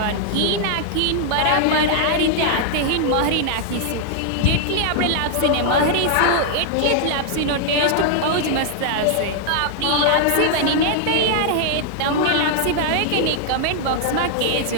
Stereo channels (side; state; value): both; different; correlation 0.00